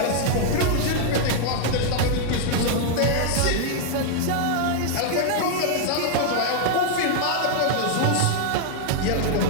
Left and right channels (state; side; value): different; both; correlation 0.00